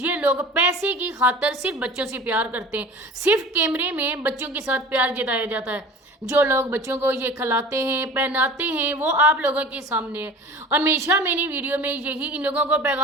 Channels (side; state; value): both; normal; correlation 0.40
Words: लोग पैसे की खातर सिर्फ बच्चों से प्यार करते हैं। सिर्फ कैमरे में बच्चों के साथ प्यार जताया जाता है। जो लोग बच्चों को ये खिलाते हैं, पहनाते हैं, वो आप लोगों के सामने है। हमेशा मैंने वीडियो में यही इन लोगों को